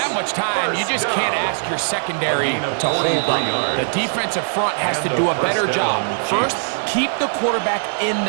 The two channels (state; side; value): silent; left; 66 dB below the other